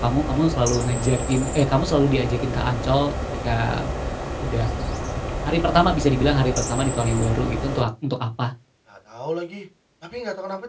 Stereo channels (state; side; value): identical; both; correlation 1.00